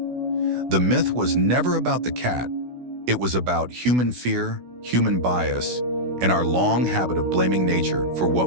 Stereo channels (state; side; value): late; left; 16 ms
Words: the myth was never about the cat. It was about human fear, human bias, and our long habit of blaming nature for